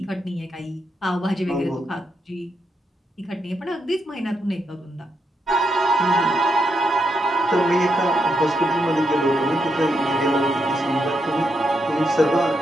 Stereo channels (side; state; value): both; normal; correlation 0.81